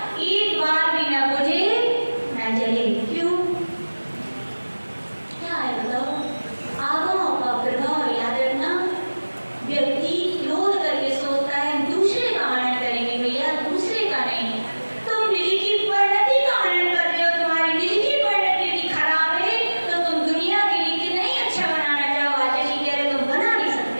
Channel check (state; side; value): inverted; both; correlation -1.00